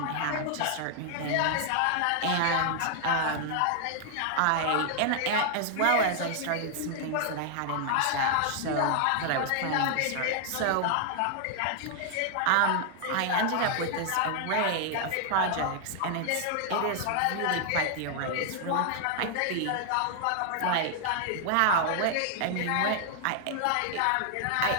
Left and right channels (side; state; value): both; different; correlation 0.00